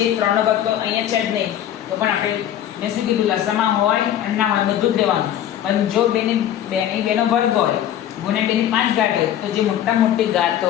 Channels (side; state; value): right; quieter; 11.1 dB